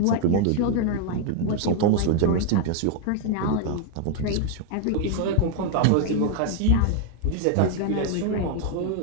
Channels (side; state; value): both; different; correlation 0.00